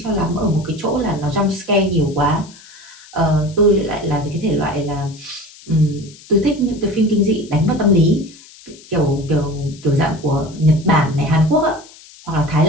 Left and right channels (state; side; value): noise; left; hiss, 22 dB below the sound